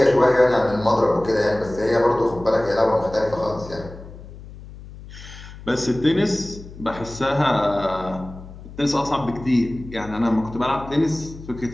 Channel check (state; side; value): noise; left; hum, 16 dB below the sound